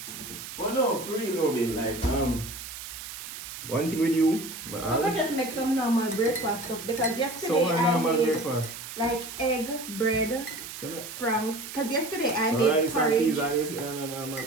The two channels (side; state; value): right; noise; hiss, 10 dB below the sound